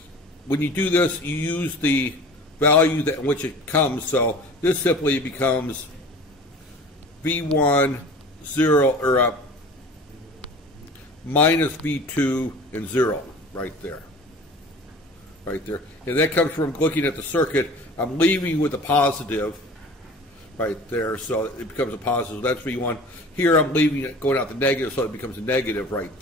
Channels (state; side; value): normal; both; correlation 0.41